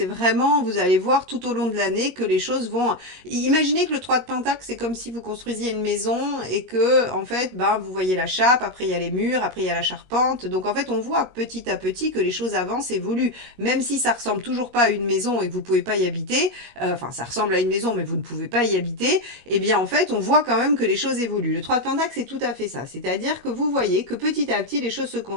vraiment, vous allez voir tout au long de l'année que les choses vont... Imaginez que le 3 de Pentacle, c'est comme si vous construisiez une maison et que, en fait, ben, vous voyez la chape, après il y a les murs, après il y a la charpente, donc en fait on voit petit à petit que les choses avancent, évoluent, même si ça ressemble toujours pas à une maison et que vous pouvez pas y habiter, enfin ça ressemble à une maison mais vous ne pouvez pas y habiter, eh bien en fait on voit quand même que les choses évoluent. Le 3 de Pentacle c'est tout à fait ça, c'est-à-dire que vous voyez que petit à petit les choses se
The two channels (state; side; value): late; left; 22 ms